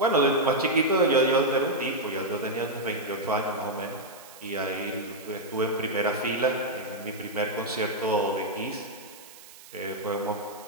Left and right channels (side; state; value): right; noise; hiss, 19 dB below the sound